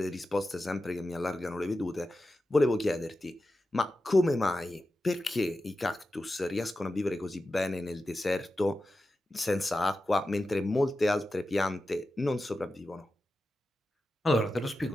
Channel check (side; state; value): both; normal; correlation 0.92